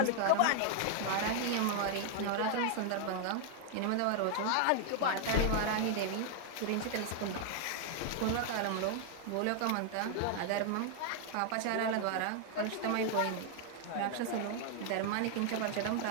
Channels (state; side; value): different; both; correlation 0.00